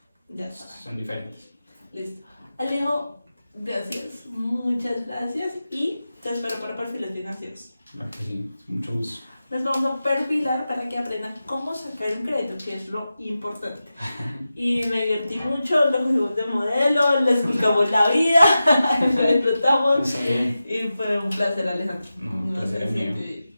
Ya está. son diferentes. Listo. Alejo, gracias. Muchas gracias. Y te espero para perfiles financieros. Claro que sí, mucho gusto. Les vamos a perfilar para que aprendan cómo sacar un crédito, que es lo importante. Y me divertí mucho, los juegos de modelo, les explicamos la vida, lo disfrutamos. Sí. Y fue un placer, Alejandro. No, un placer sé es si mío. te-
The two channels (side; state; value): both; inverted; correlation -0.93